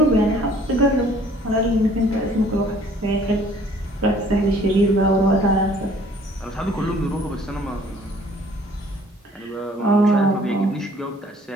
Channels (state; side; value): normal; both; correlation 0.56